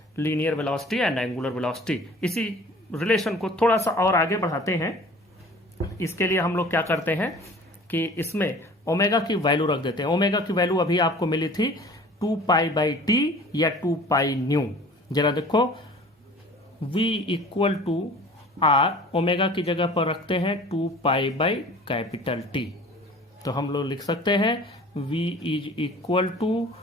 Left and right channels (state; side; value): normal; both; correlation 0.46